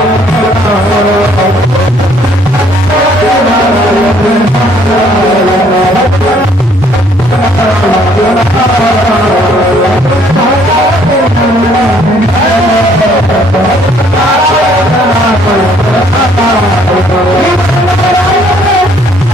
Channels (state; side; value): normal; both; correlation 0.63